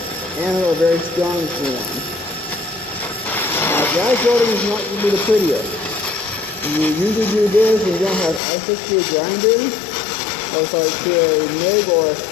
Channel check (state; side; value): drops out; right; at 8.4 s